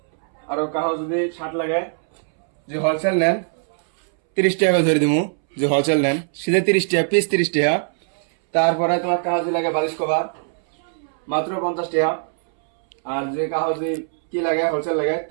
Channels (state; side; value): silent; left; 64 dB below the other